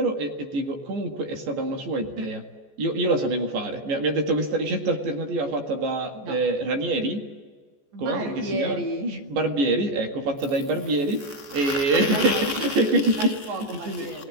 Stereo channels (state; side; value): late; left; 14 ms